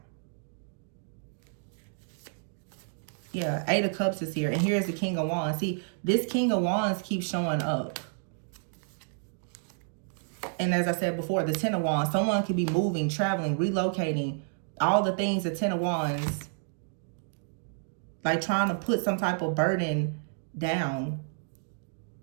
Yeah, Eight of Cups is here, and here's the King of Wands. See, this King of Wands keeps showing up. And as I said before, the Ten of Wands, someone could be moving, traveling, relocating, all the things, the Ten of Wands, like trying to put some type of burden down.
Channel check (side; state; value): left; silent; digital silence